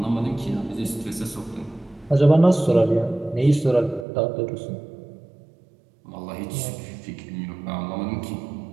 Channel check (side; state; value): left; drops out; at 4.0 s